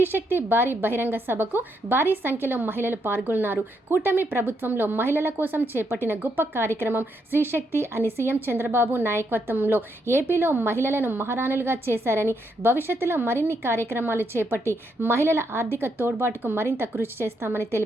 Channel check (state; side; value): normal; both; correlation 0.78